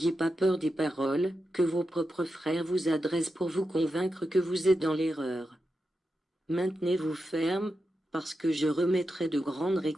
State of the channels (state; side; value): normal; both; correlation 0.89